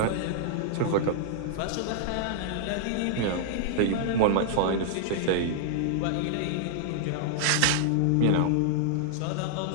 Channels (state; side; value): different; both; correlation -0.01